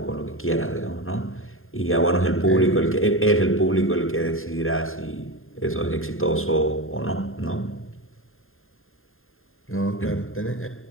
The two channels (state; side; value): late; right; 0.61 ms